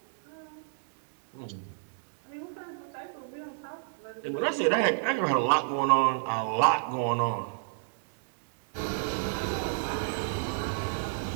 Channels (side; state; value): left; silent; digital silence